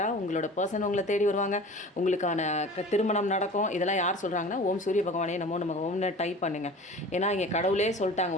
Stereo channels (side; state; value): both; normal; correlation 0.40